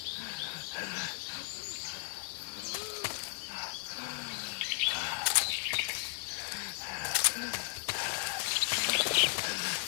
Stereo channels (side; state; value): right; silent; 54 dB below the other